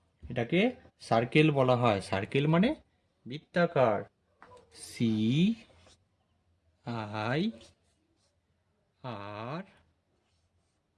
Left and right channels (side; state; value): both; identical; correlation 1.00